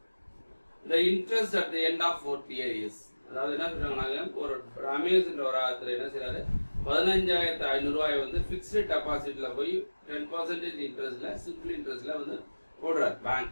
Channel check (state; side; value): inverted; both; correlation -1.00